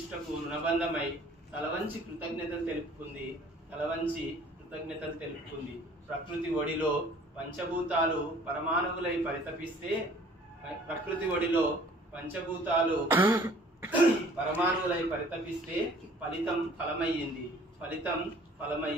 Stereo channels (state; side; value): normal; both; correlation 0.53